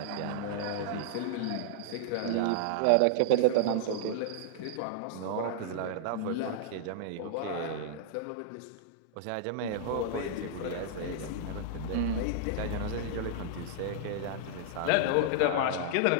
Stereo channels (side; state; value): both; different; correlation -0.01